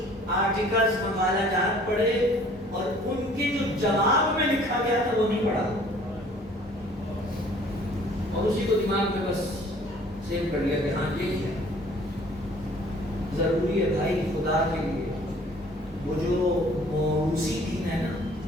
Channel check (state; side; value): normal; both; correlation 0.54